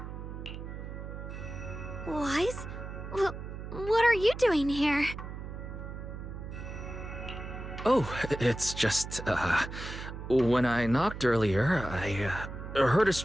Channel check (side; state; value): right; noise; hum, 9 dB below the sound